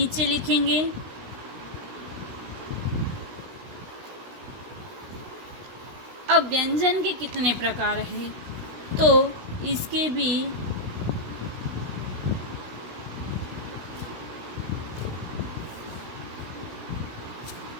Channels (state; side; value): late; left; 16 ms